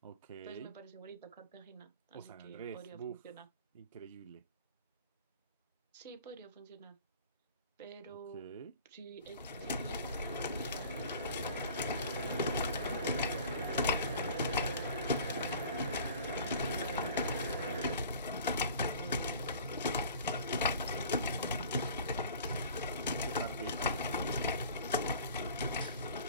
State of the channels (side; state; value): both; inverted; correlation -0.45